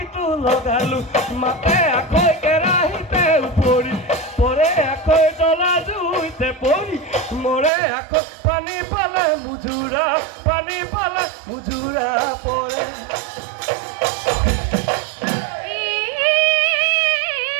লগালো মাতে আখৈ কেৰাহীতে পৰি পৰে আখৈ জ্বলা জুইতে পৰি মৰে আখৈ পানী পালে মুজুৰা পৰে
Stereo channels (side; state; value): left; drops out; at 7.7 s